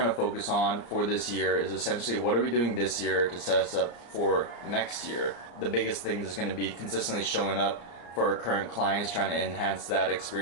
to focus on for this year is essentially what are we doing this year to set us up for next year. The biggest thing is going to be consistently showing up for our current clients, trying to enhance that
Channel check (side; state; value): right; late; 34 ms